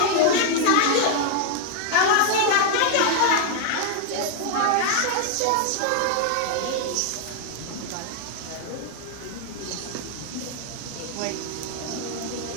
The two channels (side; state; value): both; different; correlation 0.00